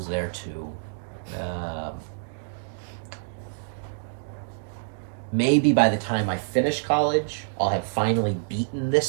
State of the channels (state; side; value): silent; left; digital silence